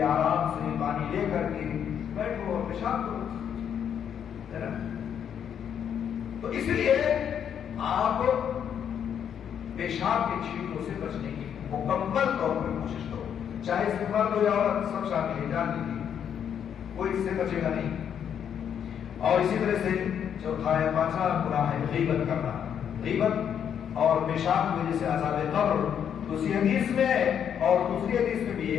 آرام سے پانی لے کر کے بیٹھو اور پیشاب کرو، ہے نا. تو اس لیے آپ پیشاب کے چھینٹوں سے بچنے کی مکمل طور پر کوشش کرو، چاہے اس میں مرد ہو یا عورت سب شامل ہے. جان لیجیے کوئی اس سے بچے گا نہیں. اور اسی طرح سے چوتھا ہے، پانچواں گناہ ہے غیبت کرنا. غیبت اور پیشاب کی وجہ سے عذاب قبر. دوسری حدیث میں اور دوسری حدیث میں بھی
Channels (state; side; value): quieter; right; 8.6 dB